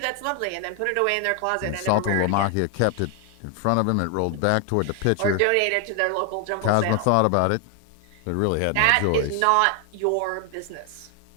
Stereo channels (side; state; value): both; different; correlation 0.00